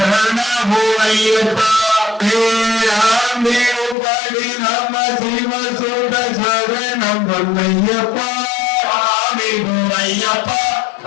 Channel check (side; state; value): right; drops out; at 4.0 s